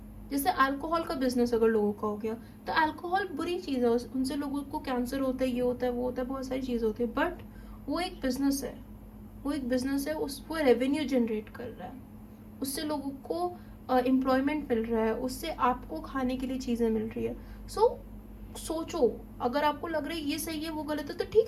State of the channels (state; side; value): identical; both; correlation 1.00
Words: जैसे अल्कोहल का बिजनेस अगर लोगों का हो गया तो अल्कोहल बुरी चीज़ है, उनसे लोगों को कैंसर होता है, ये होता है, वो होता है, बहुत सारी चीज़ होती है, बट वो एक बिजनेस है, वो एक बिजनेस है, वो रेवेन्यू जनरेट कर रहा है, उससे लोगों को एम्प्लॉयमेंट मिल रहा है, उससे आपको खाने के लिए चीज़ें मिल रही है। सोचो, अगर आपको लग रहा है ये सही है वो गलत है तो